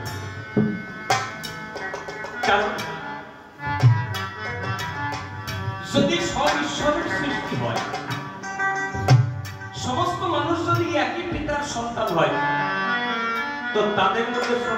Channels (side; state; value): both; identical; correlation 1.00